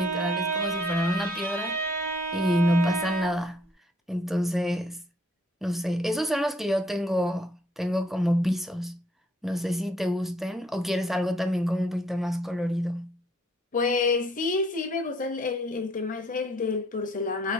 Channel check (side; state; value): both; normal; correlation 0.64